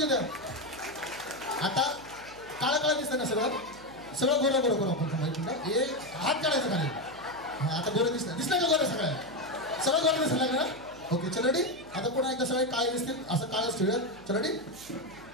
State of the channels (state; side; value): noise; right; hum, 21 dB below the sound